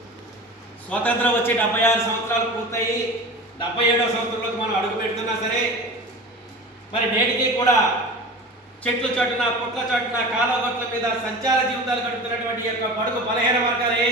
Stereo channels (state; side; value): normal; both; correlation 0.34